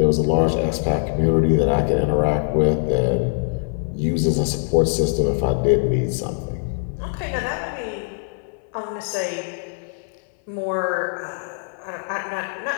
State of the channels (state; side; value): silent; right; 64 dB below the other